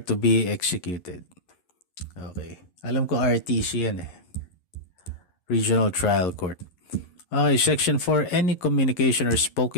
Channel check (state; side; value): late; right; 11 ms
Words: be executed. Okay. Alam ko RTC yan Regional Trial Court. Okay, Section 4, any communication or